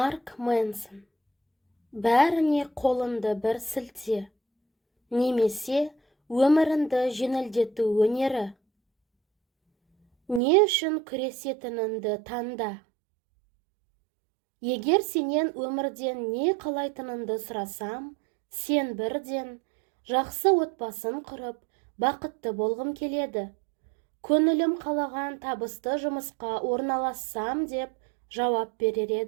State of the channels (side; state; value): left; drops out; at 10.4 s